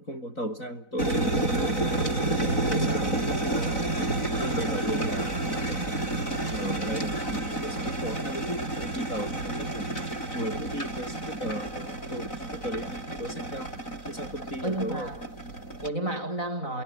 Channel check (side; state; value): right; late; 4.0 ms